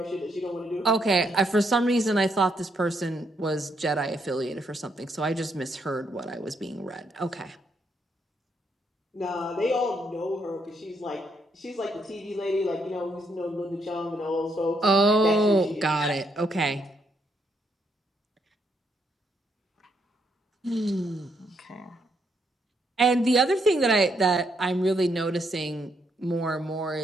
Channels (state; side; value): normal; both; correlation 0.75